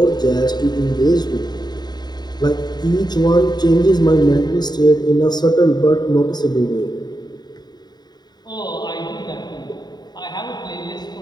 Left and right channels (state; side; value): late; right; 0.20 ms